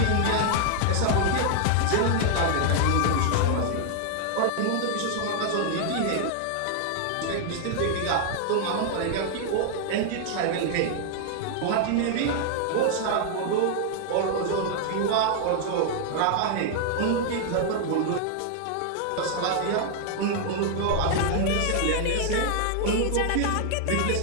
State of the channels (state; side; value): different; both; correlation 0.00